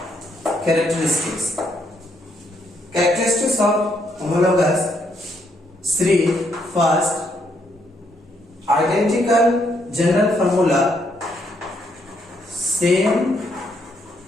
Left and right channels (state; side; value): normal; both; correlation 0.74